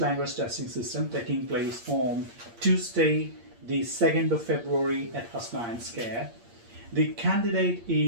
Language Testing System taking place on Tuesday, the 2nd of February at Hasnain Square. The candidate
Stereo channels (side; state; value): left; late; 8.6 ms